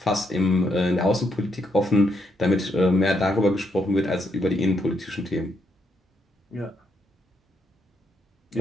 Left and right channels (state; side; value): normal; both; correlation 0.77